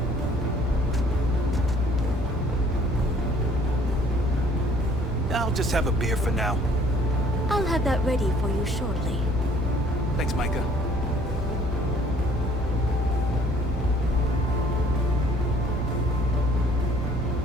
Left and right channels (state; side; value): normal; both; correlation 0.57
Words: I'll just have a beer for now. I'll have that ready for you shortly. Thanks, Micah.